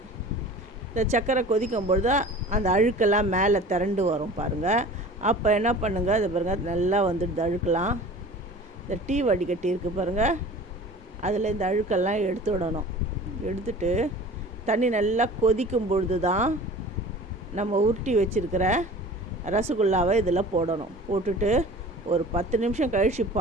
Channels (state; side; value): normal; both; correlation 0.41